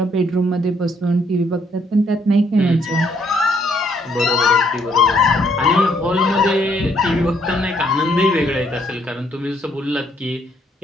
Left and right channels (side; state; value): both; normal; correlation 0.69